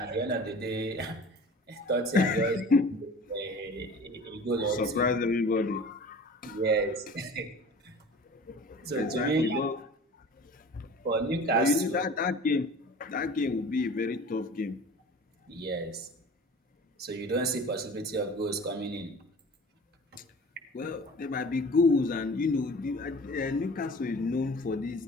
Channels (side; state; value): both; normal; correlation 0.42